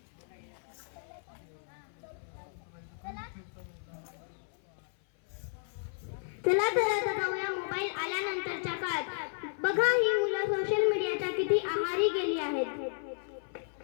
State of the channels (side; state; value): right; silent; 56 dB below the other